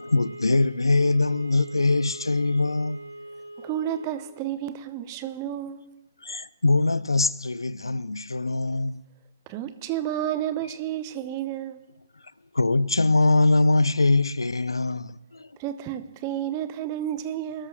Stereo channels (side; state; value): both; inverted; correlation -0.83